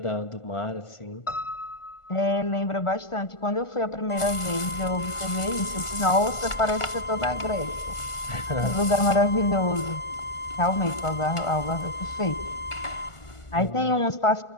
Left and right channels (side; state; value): right; late; 1.4 ms